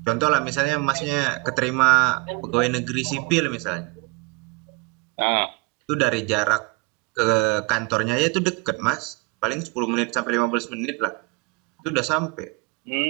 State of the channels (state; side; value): quieter; left; 27.2 dB